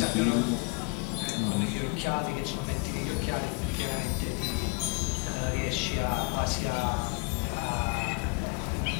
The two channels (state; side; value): quieter; right; 29.3 dB